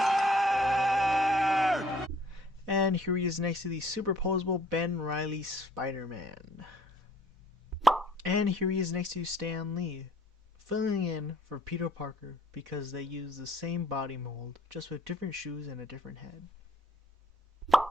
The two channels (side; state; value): both; normal; correlation 0.59